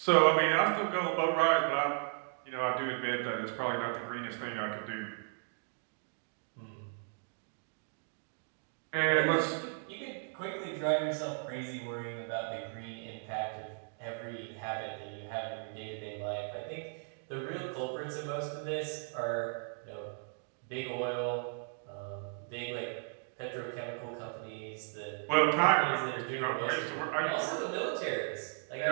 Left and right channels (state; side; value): silent; left; 54 dB below the other